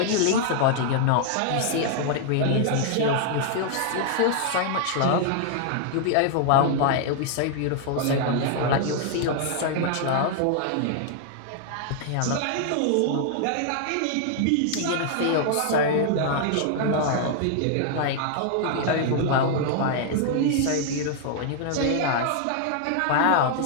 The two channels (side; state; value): both; different; correlation -0.01